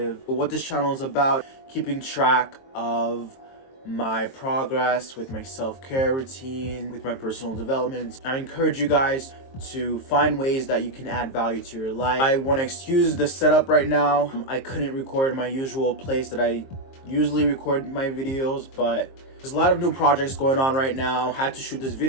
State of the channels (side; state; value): right; late; 22 ms